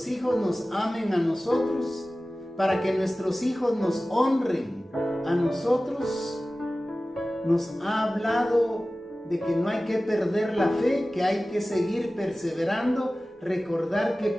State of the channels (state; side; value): normal; both; correlation 0.97